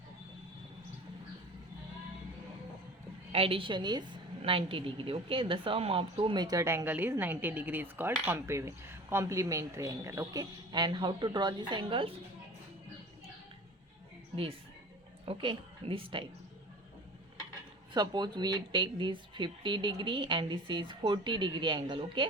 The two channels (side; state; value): both; normal; correlation 0.40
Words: addition is 90 degree. Okay, the sum of two measured angle is 90 degree is called complementary angle. Okay, and how to draw these angles? This. Okay, this type. Suppose we take this 50 degree and this is 40 degree angle.